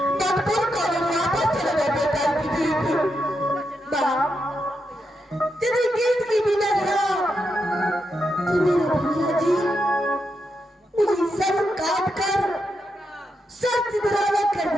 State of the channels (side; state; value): both; normal; correlation 0.84